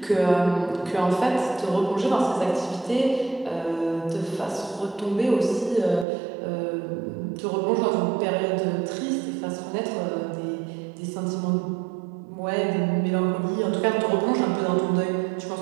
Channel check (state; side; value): drops out; left; at 6.1 s